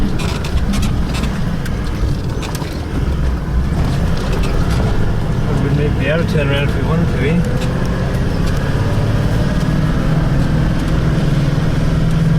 We'd be able to turn around if we wanted to, eh?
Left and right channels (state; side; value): identical; both; correlation 1.00